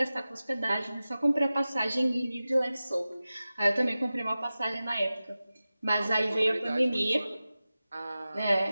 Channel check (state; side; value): inverted; both; correlation -0.95